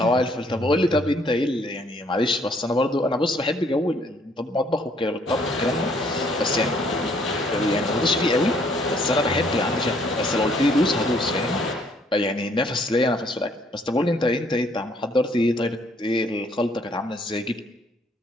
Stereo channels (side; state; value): both; normal; correlation 0.65